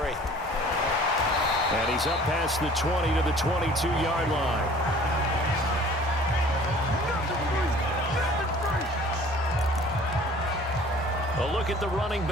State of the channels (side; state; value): both; normal; correlation 0.50